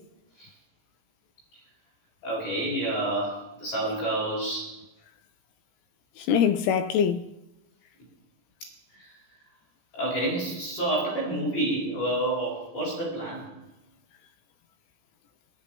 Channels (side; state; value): right; late; 18 ms